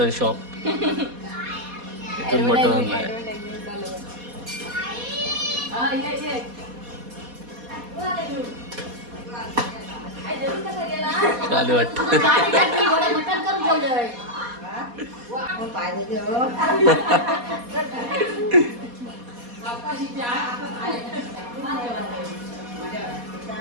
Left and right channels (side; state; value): left; late; 4.2 ms